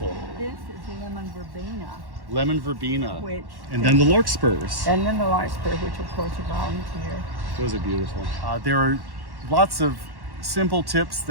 This is lemon verbena. Lemon verbena. Which And then the larkspurs. And then the larkspur, which of course are volunteer. Those are beautiful. There are lots of simple tips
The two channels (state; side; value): late; left; 1.1 ms